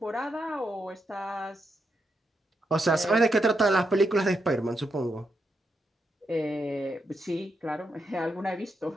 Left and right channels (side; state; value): both; normal; correlation 0.82